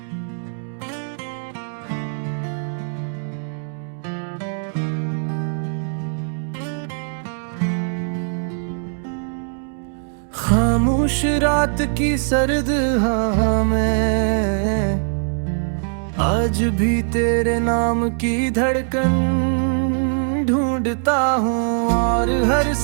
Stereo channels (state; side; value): silent; left; 65 dB below the other